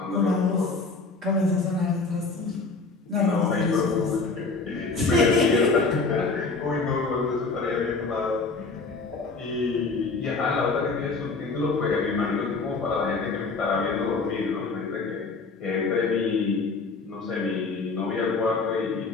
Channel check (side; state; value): right; quieter; 4.0 dB